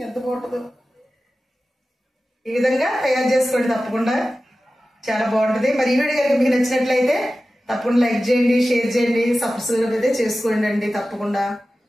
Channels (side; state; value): both; normal; correlation 0.95